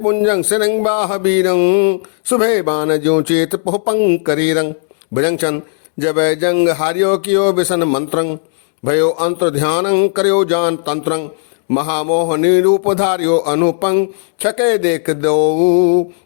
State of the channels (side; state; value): right; silent; digital silence